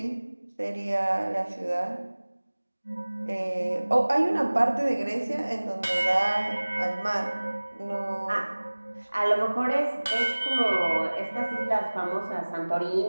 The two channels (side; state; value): both; inverted; correlation -1.00